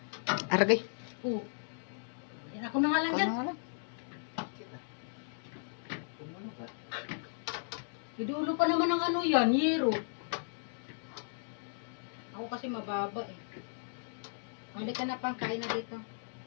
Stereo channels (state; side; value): silent; right; digital silence